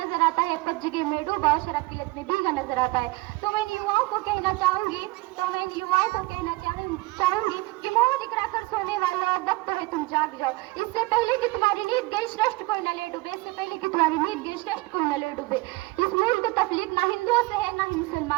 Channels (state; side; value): quieter; left; 22.5 dB